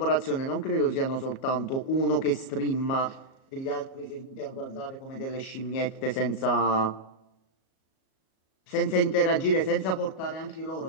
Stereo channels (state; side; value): late; right; 37 ms